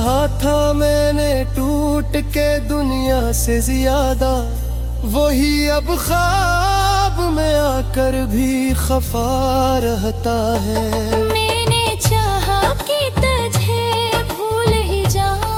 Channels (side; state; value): both; identical; correlation 1.00